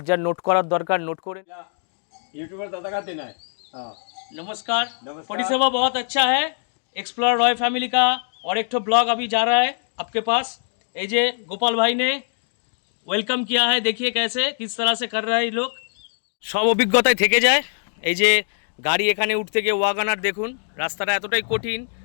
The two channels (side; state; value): right; silent; digital silence